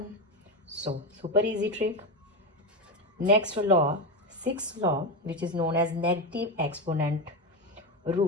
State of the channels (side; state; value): both; normal; correlation 0.14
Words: So super easy trick. Next law, 6th law which is known as negative exponent